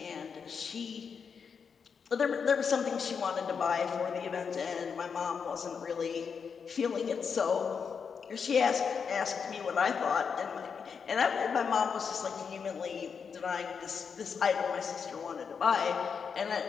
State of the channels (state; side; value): quieter; right; 6.2 dB